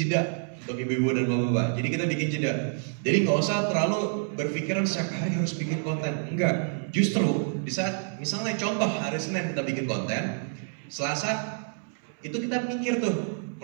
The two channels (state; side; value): silent; left; 59 dB below the other